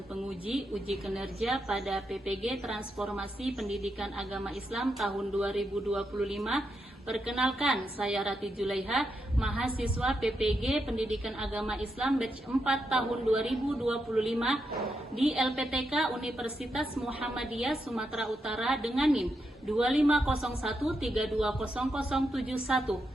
penguji uji kinerja pada PPG Transformasi Pendidikan Agama Islam tahun 2025. Perkenalkan, saya Rati Julaiha, mahasiswa PPG Pendidikan Agama Islam batch 4 tahun 2025 di LPTK Universitas Muhammadiyah Sumatera Utara dengan NIM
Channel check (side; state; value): both; normal; correlation 0.83